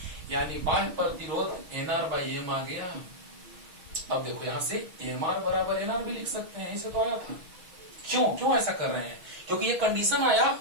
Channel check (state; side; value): late; left; 6.2 ms